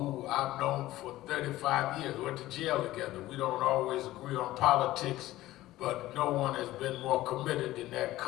I've known for 35 years, went to jail together. We don't always agree on politics, but no one has been more committed than that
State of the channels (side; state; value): right; quieter; 16.1 dB